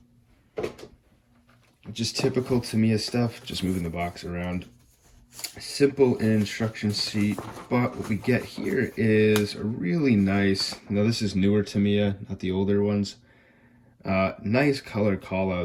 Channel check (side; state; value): both; identical; correlation 1.00